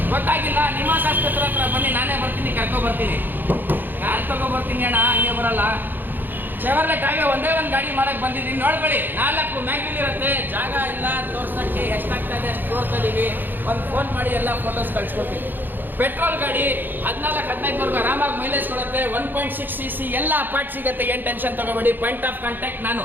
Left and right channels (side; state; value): left; late; 0.091 ms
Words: ಗೊತ್ತಾಗಿಲ್ಲ? ನಿಮಾನ್ಸ್ ಆಸ್ಪತ್ರೆ ಹತ್ರ ಬನ್ನಿ, ನಾನೇ ಬರ್ತೀನಿ, ಕರ್ಕೊಬರ್ತೀನಿ. ಕಾರ್ ತಗೊಬರ್ತೀನಿ ಅಣ್ಣ, ಹಂಗೆ ಬರಲ್ಲ. ಚೆವರ್ಲೆಟ್ ಆಗಿ ಒಂದೇ ಒಂದು ಗಾಡಿ ಮಾಡಕ್ಕೆ ಬಂದಿದ್ದೀನಿ, ನೋಡ್ಕೊಳ್ಳಿ. 4 ಮ್ಯಾಗ್ವಿಲ್ ಇರುತ್ತೆ, ಜಾಗ ಇಲ್ಲ ತೋರ್ಸೋಕ್ಕೆ. ಎಷ್ಟಾಗ್ತಾ ಇದೆ ಅಷ್ಟು ತೋರಿಸ್ತಾ ಇದ್ದೀವಿ. ಒಂದು ಫೋನ್ ಮಾಡಿ ಎಲ್ಲ ಫೋಟೋಸ್ ಕಳಿಸ್ಕೊಡ್ತೀವಿ. ಪೆಟ್ರೋಲ್ ಗಾಡಿ 14-15ವರೆಗೂ ಆರಾಮಾಗಿ ಮೈಲೇಜ್ ಕೊಡುತ್ತೆ. 1.6 cc ಎಲ್ಲ ಪಾರ್ಟ್ ಸಿಗುತ್ತೆ, ಏನು ಟೆನ್ಷನ್ ತಗೋಬೇಡಿ. ಪಾಯಿಂಟ್ ಆಫ್ ಕಾಂಟ್ಯಾಕ್ಟ್ ನಾನು.